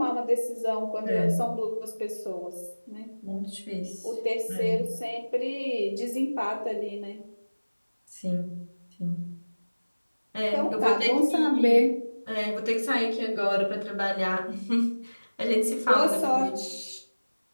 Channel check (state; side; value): inverted; both; correlation -1.00